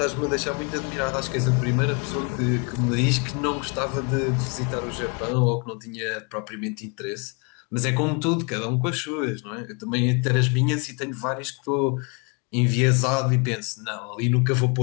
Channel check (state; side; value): quieter; right; 34.0 dB